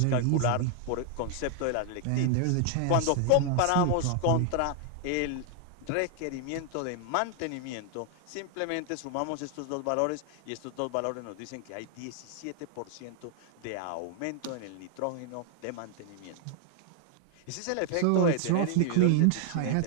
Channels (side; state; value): both; different; correlation 0.00